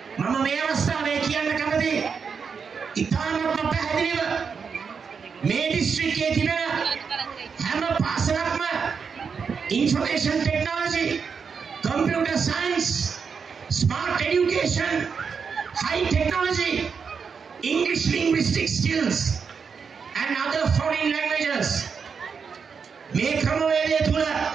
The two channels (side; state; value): left; quieter; 6.0 dB